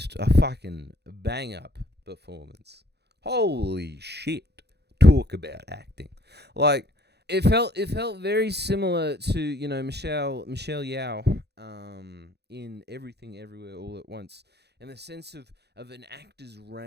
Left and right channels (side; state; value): left; late; 0.48 ms